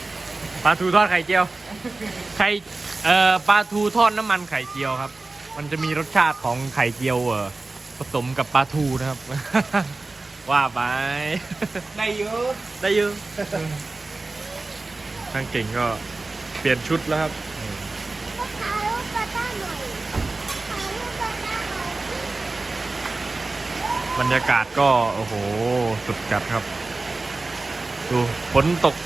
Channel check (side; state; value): left; quieter; 3.4 dB